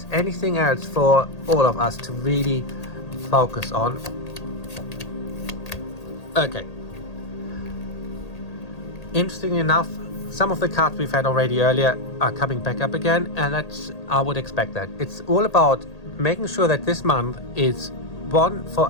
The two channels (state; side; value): late; right; 1.8 ms